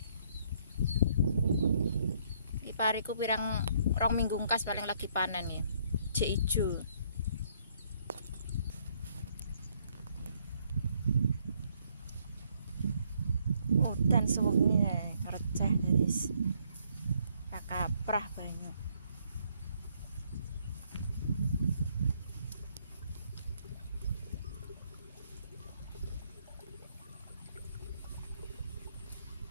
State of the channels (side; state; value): both; inverted; correlation -0.68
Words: Iki pariku pirang rong minggu ngkas paling lagi panen ya. Jek ijo. Udan suwengi receh guys. Kaprah banyu.